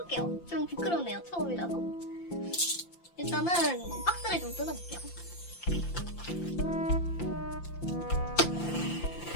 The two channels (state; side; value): late; right; 5.8 ms